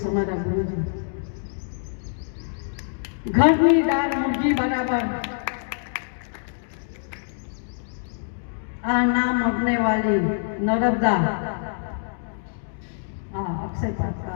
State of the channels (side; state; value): right; silent; digital silence